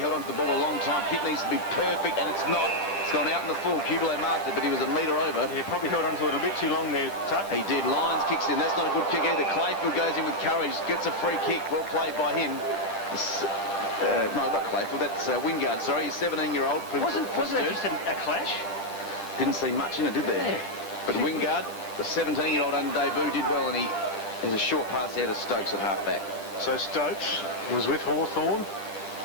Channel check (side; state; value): right; late; 10 ms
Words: on to the ball a long time. Kick needs to be perfect, and it's not. It's gone out in the full. Kubler marked it, but he was a metre over. Yeah, probably held on to it a bit too long there, Tuck. He did. Lyons kicks in. That's not a good kick either. Clayfield goes in with courage. Gets a free kick. Well played by him. No, not Clayfield. That's Wingard. Sorry, he's 17-year-old. Wasn't that just a clash? Didn't see much in it, did there? Yeah. But Wingard, the 17-year-old under debut, did well, and he has a short pass out of Stokes at half-back. So Stokes was with Hawthorn